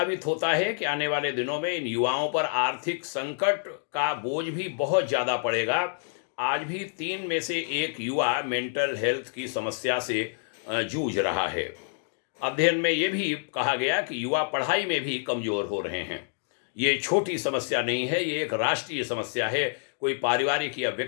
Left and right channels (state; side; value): silent; right; digital silence